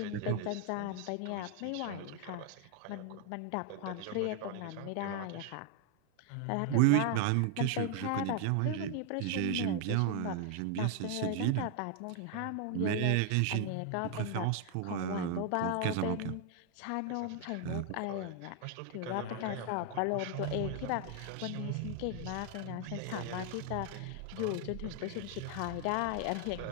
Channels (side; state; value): both; different; correlation 0.00